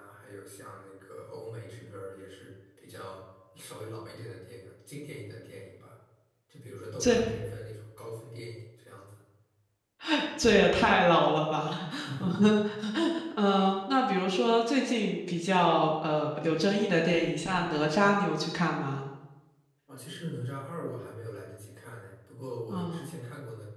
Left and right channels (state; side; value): identical; both; correlation 1.00